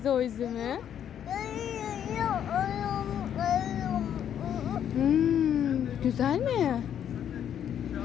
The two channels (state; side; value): quieter; right; 9.5 dB